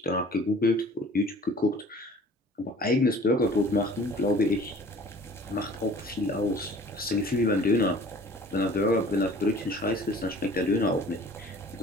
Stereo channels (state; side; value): normal; both; correlation 0.49